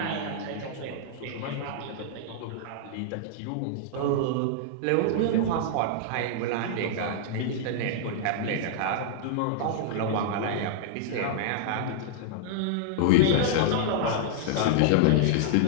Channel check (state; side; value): different; both; correlation -0.01